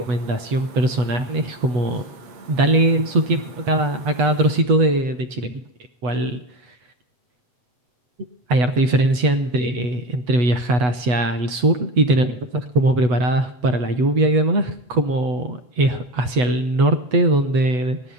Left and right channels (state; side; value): late; left; 8.1 ms